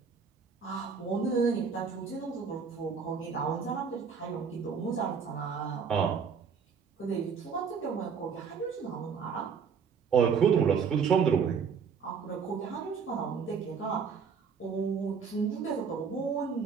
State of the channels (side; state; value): left; quieter; 6.2 dB